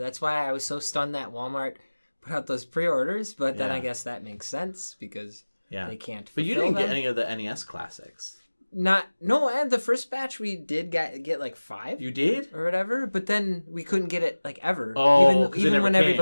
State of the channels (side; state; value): both; inverted; correlation -1.00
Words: why I was so stunned that Walmart put out those pre-orders, but then Yeah. I guess that makes sense, because they can't But you fulfill didn't get them. any of the NES classics. And the first batch we did get like 5 You did? or whatever, but then we couldn't get it like ever. Oh, 'cause it even never when came.